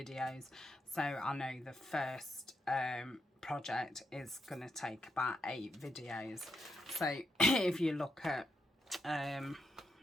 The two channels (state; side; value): normal; both; correlation 0.82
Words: So I know the first project is going to take about 8 videos. So if you look at